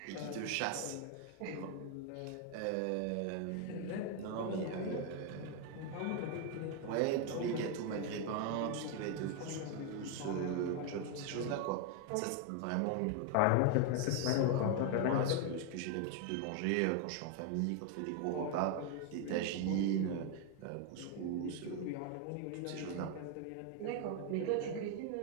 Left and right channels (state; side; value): different; both; correlation 0.01